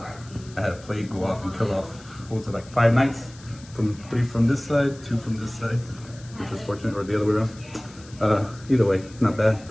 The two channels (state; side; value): noise; left; hiss, 22 dB below the sound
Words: I had a plague go off and kill off, what was it, like 5 knights? 3 from this side, 2 from this side, which was fortunate, or the other way around. Either way, not bad.